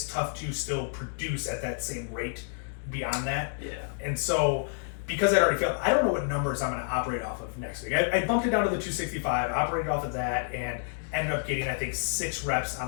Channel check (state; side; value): silent; right; digital silence